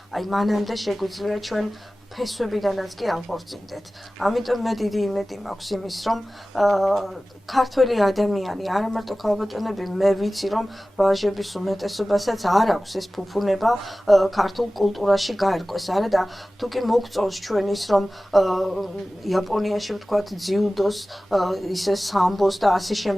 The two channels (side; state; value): both; normal; correlation 0.97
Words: აი მანამდე შეგვიძლია ჩვენ ფესვებიდანაც კი აღორწინდეთ. ამიტომ მე დიდი იმედი მაქვს იმის, რომ ქართველი ადამიანი, არა მარტო ქალბატონები, მე ვიცი, რომ ვაჟების უმეტესობასაც არ აქვს ეს ფუფუნება ქართულ კულტურაში გაერკვეს, არა და თუ კი მოგწონს ჩვენ ის, რომ იაპონიაში ვთქვათ ძიუდოს, ისე სამბოს და ასე